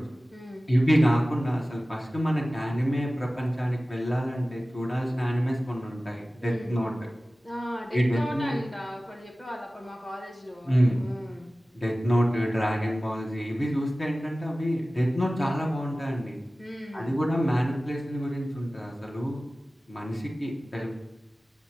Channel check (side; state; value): both; normal; correlation 0.97